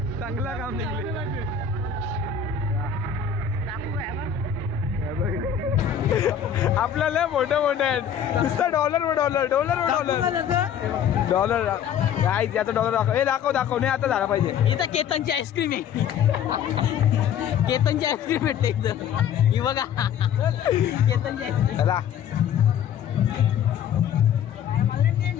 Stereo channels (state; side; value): quieter; right; 8.4 dB